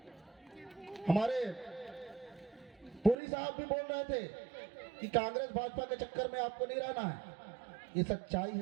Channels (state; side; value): drops out; left; at 3.2 s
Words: हमारे पुरी साहब भी बोल रहे थे कि कांग्रेस भाजपा के चक्कर में आपको नहीं रहना है। ये सच्चाई है